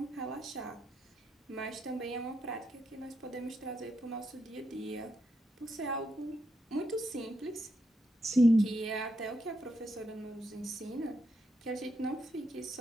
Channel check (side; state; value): both; normal; correlation 0.81